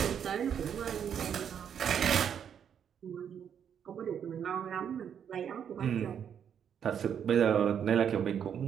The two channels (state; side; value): quieter; left; 8.3 dB